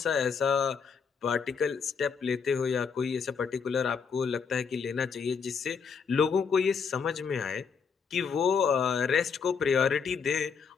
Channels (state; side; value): quieter; right; 6.1 dB